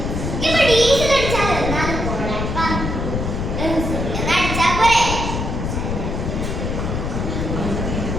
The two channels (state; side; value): noise; left; rumble, 2 dB below the sound